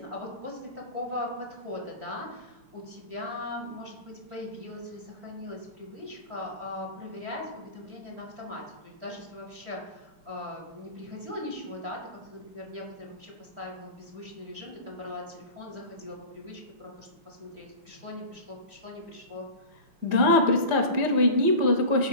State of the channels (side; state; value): left; late; 4.9 ms